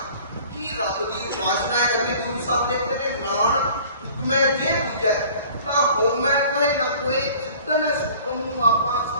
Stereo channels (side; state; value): both; inverted; correlation -0.49